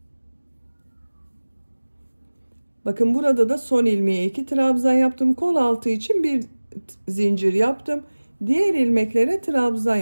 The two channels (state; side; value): inverted; both; correlation -1.00